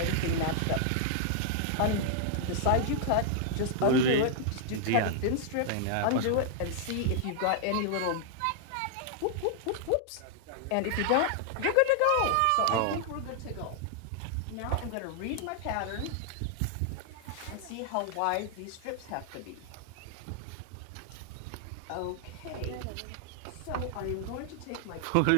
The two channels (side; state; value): both; different; correlation -0.01